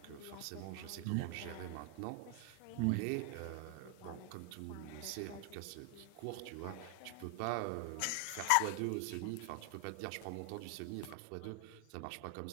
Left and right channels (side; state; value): both; different; correlation 0.01